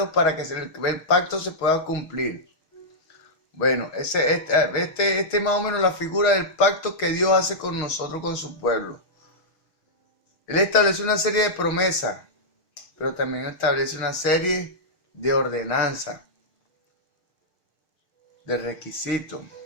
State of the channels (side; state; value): right; late; 6.4 ms